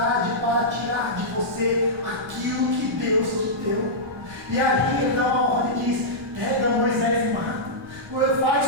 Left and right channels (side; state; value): left; noise; rumble, 25 dB below the sound